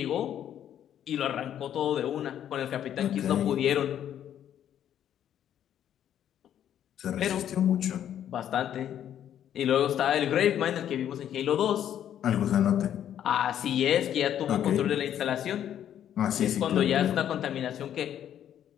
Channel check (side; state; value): right; quieter; 10.3 dB